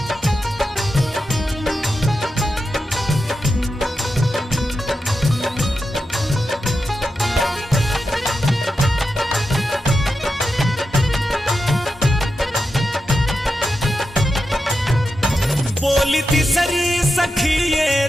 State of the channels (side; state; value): both; normal; correlation 0.89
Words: बोली तीसरी सखी